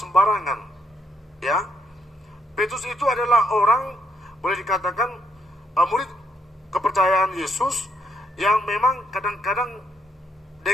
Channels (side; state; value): both; normal; correlation 0.74